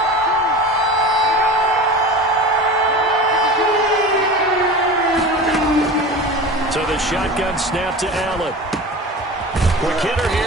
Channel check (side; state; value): both; normal; correlation 0.33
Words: So the shotgun snap to Allen. Quick hitter